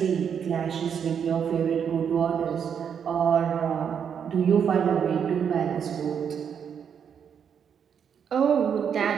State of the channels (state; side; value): quieter; left; 7.6 dB